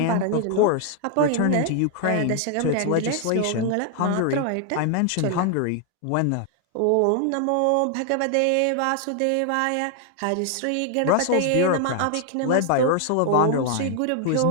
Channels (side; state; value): both; different; correlation 0.00